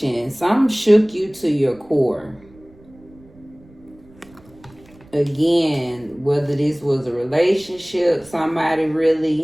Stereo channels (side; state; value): right; noise; rumble, 26 dB below the sound